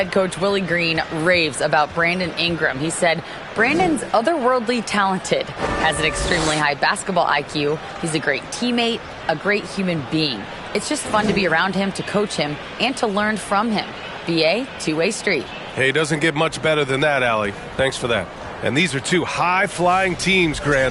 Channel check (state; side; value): identical; both; correlation 1.00